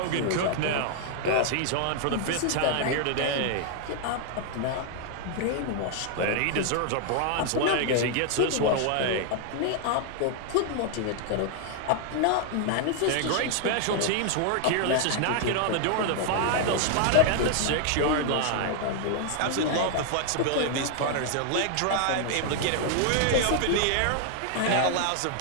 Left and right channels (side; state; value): both; different; correlation 0.00